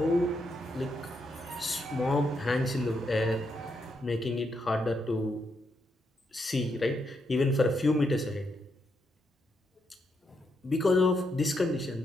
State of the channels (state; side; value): normal; both; correlation 0.80